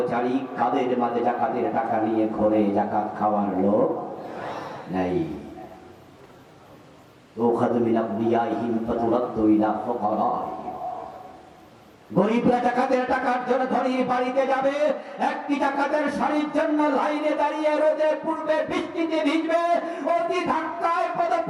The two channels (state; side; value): identical; both; correlation 1.00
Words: কাদের মাঝে যাকাতের টাকা নিয়ে ঘরে যাকাত খাওয়ার লোক নাই। ওখাদু মিন আবনিয়াইহিম ফাতুরাদ্দু ইলা ফুকারাইহিম। গরিবরা যাকাতের টাকার জন্য ধনীর বাড়িতে যাবে, একটি যাকাতের শাড়ির জন্য লাইনে দাঁড়িয়ে রোদে পূর্বে বৃষ্টিতে ভিজবে, অতি ধাক্কায়